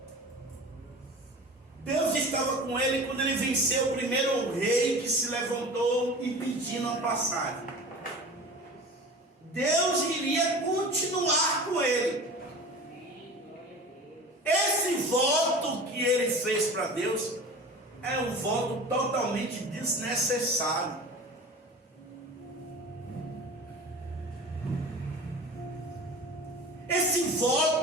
Deus estava com ele quando ele venceu o primeiro rei que se levantou impedindo a passagem. Deus iria continuar com ele. Esse voto que ele fez para Deus é um voto totalmente desnecessário. Esse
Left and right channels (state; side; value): normal; both; correlation 0.37